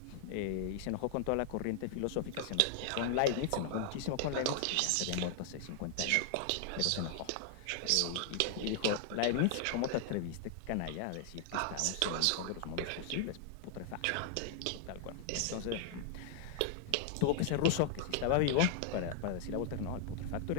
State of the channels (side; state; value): both; different; correlation 0.00